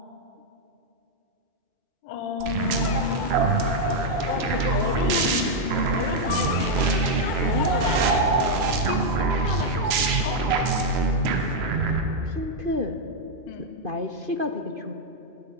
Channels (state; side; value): late; left; 3.0 ms